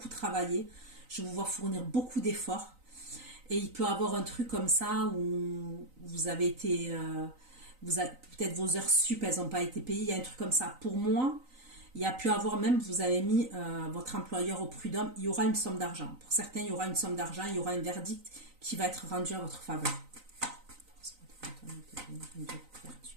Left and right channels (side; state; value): left; late; 3.9 ms